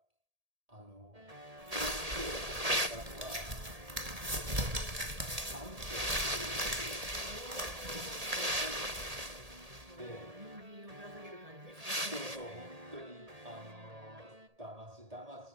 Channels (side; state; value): left; late; 1.8 ms